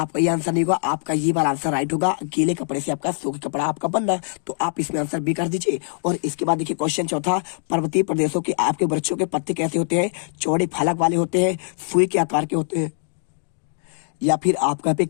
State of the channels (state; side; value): silent; right; digital silence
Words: ये आंसर नहीं होगा। आपका ये वाला आंसर राइट होगा, गीले कपड़े से आपका सूखे कपड़ा आपका बनना। तो आप इसमें आंसर बी कर दीजिए। और इसके बाद देखिए क्वेश्चन चौथा, पर्वतीय प्रदेशों के आपके वृक्षों के पत्ते कैसे होते हैं? चौड़े फलक वाले होते हैं, सुई के आकार के होते हैं, या फिर आपका यहाँ पे